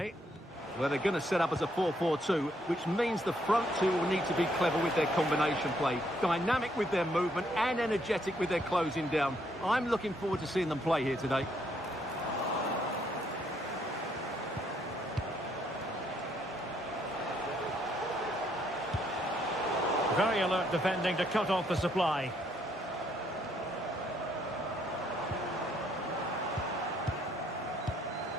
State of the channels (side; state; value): both; normal; correlation 0.71